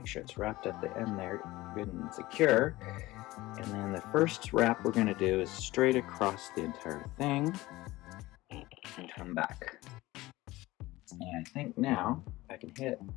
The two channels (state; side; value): quieter; right; 18.7 dB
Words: sure it's wrapped at the end there, good and secure. And then the first wrap we're going to do is straight across the entire thing and come back. And I think now I can hit,